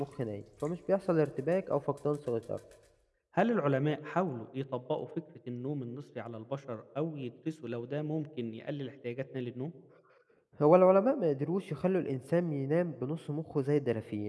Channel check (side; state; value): both; identical; correlation 1.00